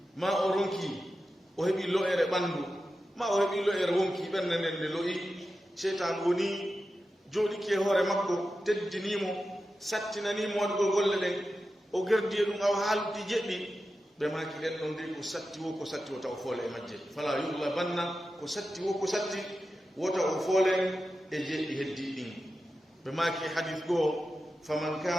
ma o ronki o heɓi lo'ere ɓanndu ma o heɓi lo'ere wonki ɓernde nden nde lo'i seytan woni jooɗiki e hoore makko teddinimo sattinanimo waɗugol golle ɗen o gerdi e ɗum aw haaldi jeɗɗi ɓe maki ɗen ɗon ndi ko satti wo taw foole e majje fala yuglabanna ko satti wo ko satti wota o foole e jeɗɗi heddi ɗin ɓe maki hadith goo faman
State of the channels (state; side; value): normal; both; correlation 0.91